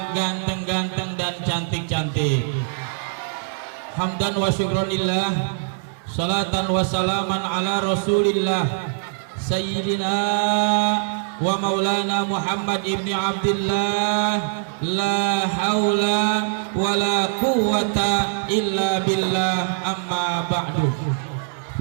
ganteng-ganteng dan cantik-cantik. Hamdan wa syukronillah, salatan wa salaman ala rasulillah Sayyidina wa maulana Muhammad ibni Abdillah. La hawla wa la quwwata illa billah, amma ba'du.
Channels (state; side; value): silent; left; 56 dB below the other